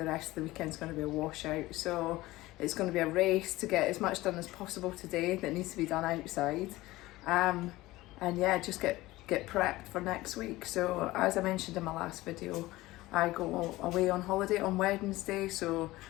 rest of the weekend's going to be a washout, so it's going to be a race to get as much done as possible today that needs to be done outside, and yeah, just get prepped for next week. So as I mentioned in my last video, I go away on holiday on Wednesday, so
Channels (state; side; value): quieter; right; 18.5 dB